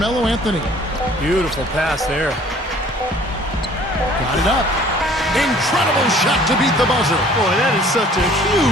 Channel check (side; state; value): both; normal; correlation 0.53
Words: Anthony. Beautiful pass there. Got it up. Incredible shot to beat the buzzer. Boy, that is such a